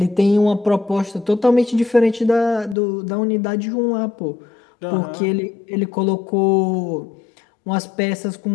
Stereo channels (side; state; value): right; drops out; at 2.8 s